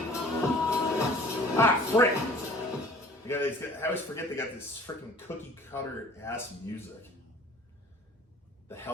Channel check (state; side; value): normal; both; correlation 0.49